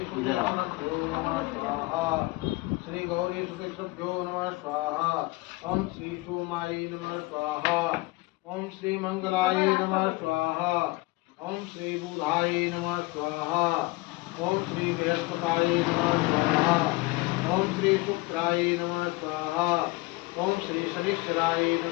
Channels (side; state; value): right; quieter; 22.4 dB